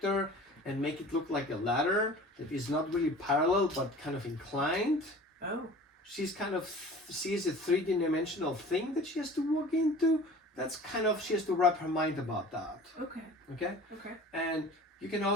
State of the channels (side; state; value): both; normal; correlation 0.43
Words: and make it look like a ladder that is not really parallel but kind of inclined. Oh. She's kind of sees a 3D-dimensional thing that she has to walk into. That's kind of, she has to wrap her mind about that. Okay. Okay? Okay. And you can